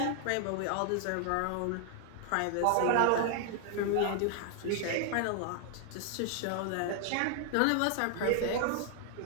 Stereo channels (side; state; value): both; different; correlation 0.00